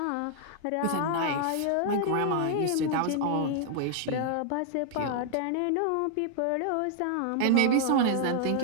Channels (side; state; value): both; different; correlation 0.00